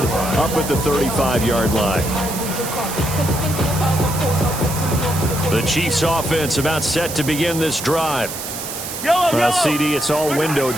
up at the 35-yard line. The Chiefs offense about set to begin this drive. Well, CD, it's all window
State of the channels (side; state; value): right; noise; hiss, 8 dB below the sound